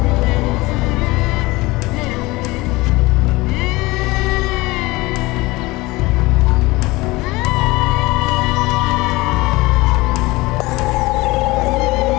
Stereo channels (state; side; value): quieter; right; 21.6 dB